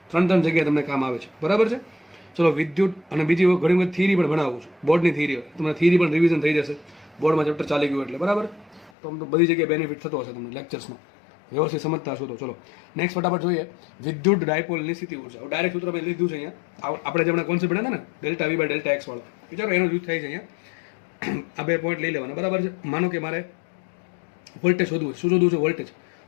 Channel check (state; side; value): drops out; right; at 8.9 s